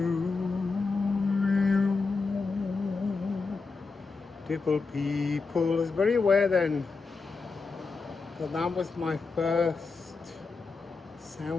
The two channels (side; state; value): right; quieter; 4.3 dB